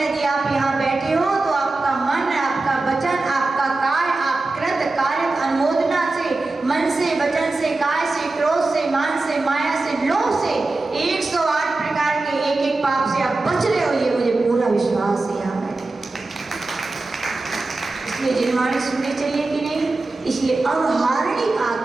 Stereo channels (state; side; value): quieter; left; 3.3 dB